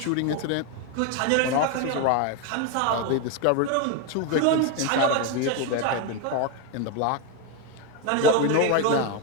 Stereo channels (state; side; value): different; both; correlation 0.02